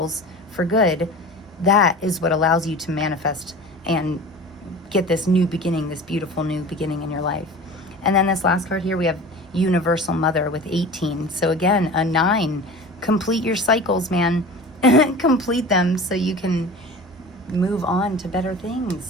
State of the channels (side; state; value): both; normal; correlation 0.36